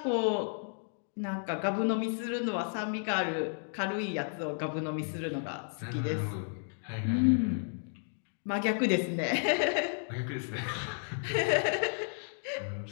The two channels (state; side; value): silent; right; digital silence